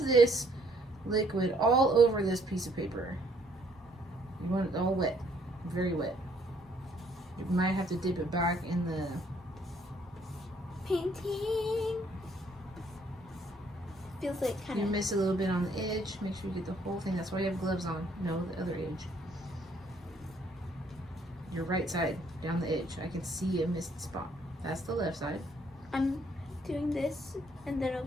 liquid all over this piece of paper. You want it all wet, very wet. You might have to dip it back in the painting. Feels like kind of. You miss a little bit on the edge. Make sure you get the whole thing. That's why you have gloves on. No, the other edge. Your right side, down the edge. I can see a missed spot. That's the left side. I'm doing this, and then I'll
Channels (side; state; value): both; normal; correlation 0.66